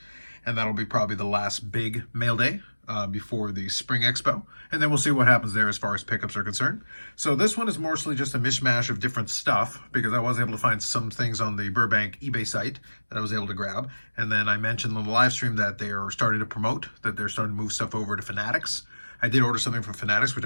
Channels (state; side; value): inverted; both; correlation -1.00